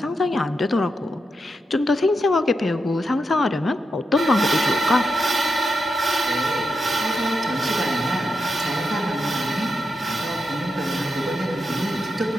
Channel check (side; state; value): both; normal; correlation 0.86